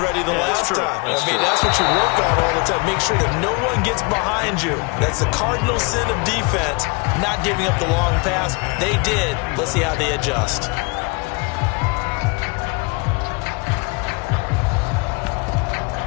ready the last time. That's what you work on all the time. Make sure that no one gets behind you. That's the cardinal sin of defense, not giving up the long pass. They did. Let's see how they adjust.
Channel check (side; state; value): right; quieter; 28.7 dB